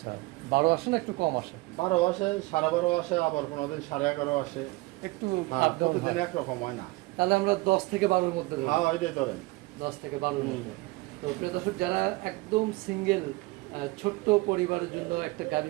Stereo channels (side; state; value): left; quieter; 22.6 dB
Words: 12 আসে না একটু কম আসে? 12 আসে, 12.5 আসে, আবার কোনোদিন 11.5 আসে। একটু হ্যাঁ, up down প্রতিদিন হয়। একরকম হয় না। তাহলে আমরা 10 থেকে 12-র মধ্যে ধরি। হ্যাঁ, ওইটাই ধরেন। 10 থেকে 12-র মধ্যে। তো প্রিয় দর্শক, যারা একদম সিঙ্গেল ছোট্ট পরিবারের জন্য একটা গাড়ি